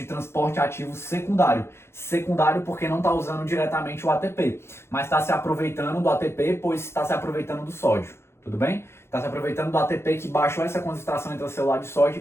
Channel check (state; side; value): late; right; 0.12 ms